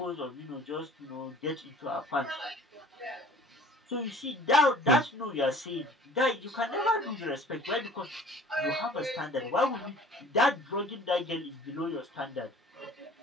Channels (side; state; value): both; normal; correlation 0.48